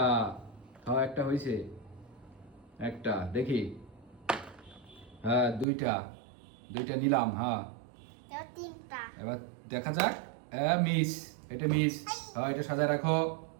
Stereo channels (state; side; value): drops out; left; at 5.7 s